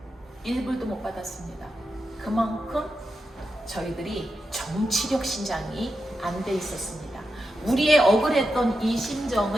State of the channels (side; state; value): both; normal; correlation 0.88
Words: 1불도 못 받았습니다. 그만큼 저희들이 정치력 신장이 안 돼 있었습니다. 우리의 억울했던 이